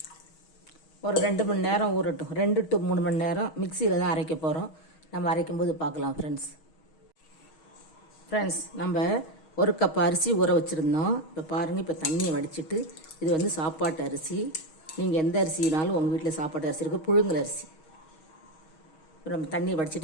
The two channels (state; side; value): late; right; 6.3 ms